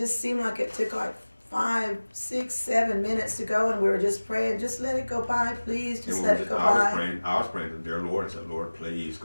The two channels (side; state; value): both; inverted; correlation -1.00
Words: seemed like it took like 5, 6, 7 minutes to go, and we were just praying, just let it go by, please, just let it go by. I was praying to the dear Lord and said, Lord, please